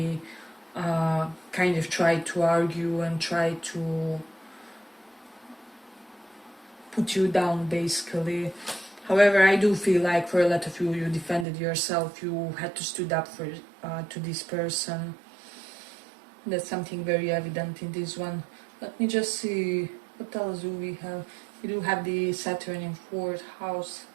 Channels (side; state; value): left; drops out; at 11.5 s